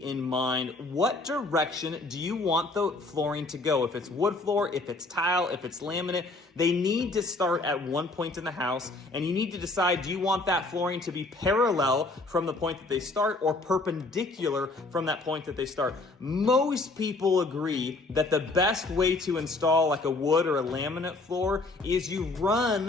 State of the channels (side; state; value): right; quieter; 3.2 dB